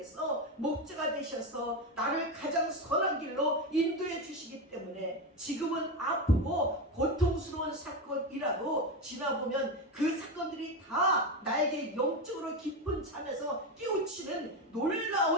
목자가 되셔서 나를 가장 선한 길로 인도해 주시기 때문에 지금은 아프고 고통스러운 사건이라도 지나보면 그 사건들이 다 나에게 영적으로 깊은 잠에서 깨우치는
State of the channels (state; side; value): normal; both; correlation 0.15